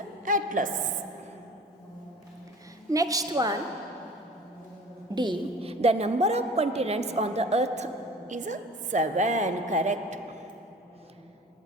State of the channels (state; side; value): normal; both; correlation 0.42